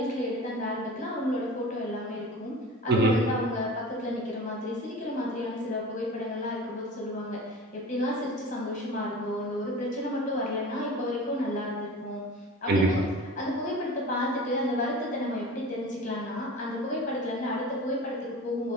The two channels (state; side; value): normal; both; correlation 0.36